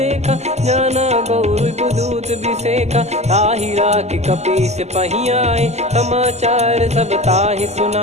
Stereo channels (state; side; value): late; left; 0.32 ms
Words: जाना गौर बुदूत बिसेखा। ताहि राख कपीस पही आए, समाचार सब ताहि